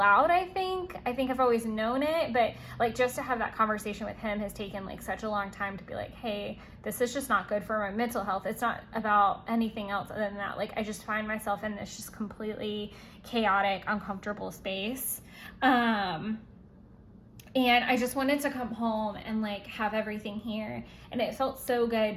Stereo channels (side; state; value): both; identical; correlation 1.00